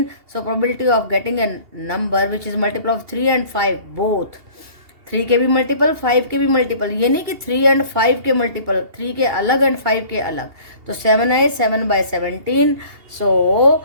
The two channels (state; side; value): late; left; 2.8 ms